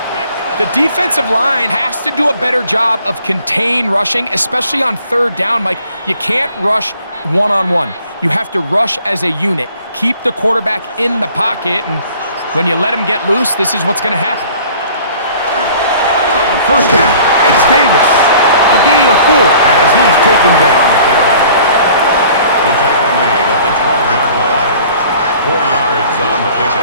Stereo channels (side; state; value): both; inverted; correlation -0.52